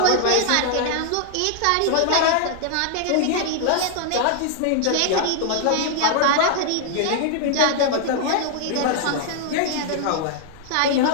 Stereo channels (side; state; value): both; different; correlation -0.01